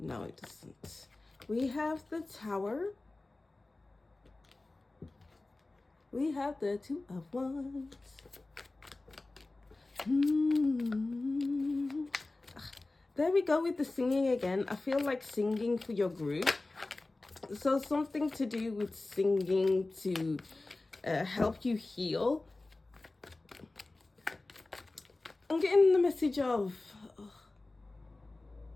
it doesn't. We have the Tower. We have the 2 of Wands. There we go with the singing again. I feel like singing for your group. So something to do with singing to help you heal. I'm getting the message of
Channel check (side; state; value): right; quieter; 3.1 dB